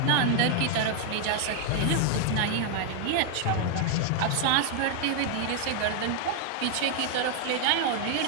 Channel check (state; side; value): different; both; correlation 0.00